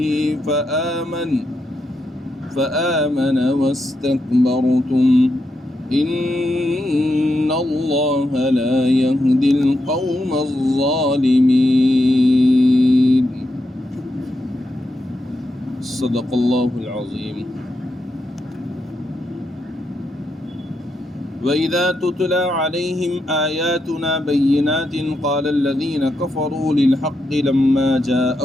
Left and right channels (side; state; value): both; normal; correlation 0.84